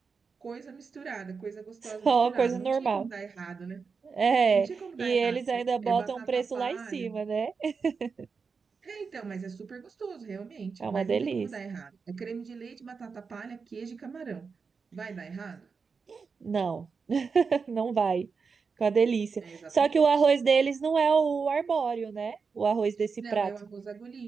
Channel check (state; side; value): quieter; left; 5.2 dB